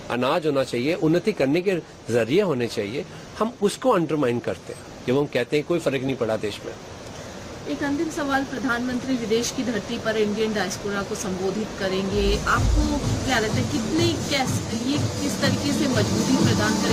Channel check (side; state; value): both; identical; correlation 1.00